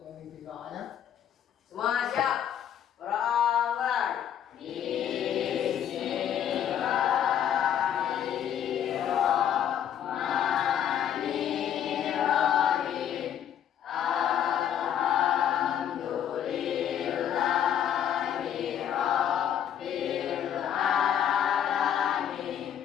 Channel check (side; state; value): right; quieter; 9.6 dB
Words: memimpin doanya. Semua siap? Mulai.